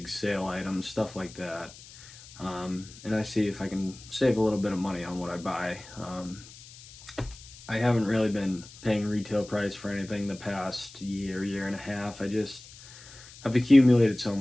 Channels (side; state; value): left; noise; hiss, 19 dB below the sound